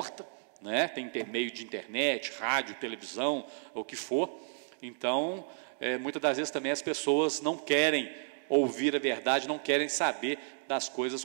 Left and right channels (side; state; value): left; silent; digital silence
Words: né? Tem meio de internet, rádio, televisão, o que for. Então, muitas das vezes também as pessoas não querem ouvir a verdade, não querem saber das coisas